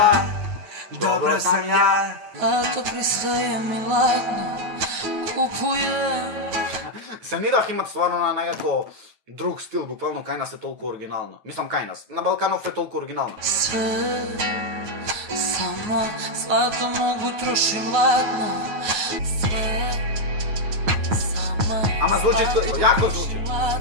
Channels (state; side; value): late; left; 9.2 ms